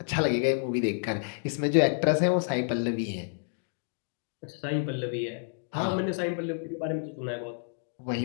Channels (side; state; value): right; silent; digital silence